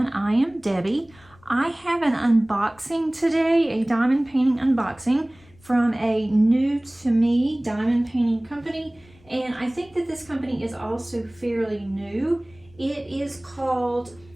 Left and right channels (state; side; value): noise; left; rumble, 28 dB below the sound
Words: I am Debbie. I have an unboxing today, a diamond painting unboxing from a new to me diamond painting company, and I think that this company is also fairly new. It is called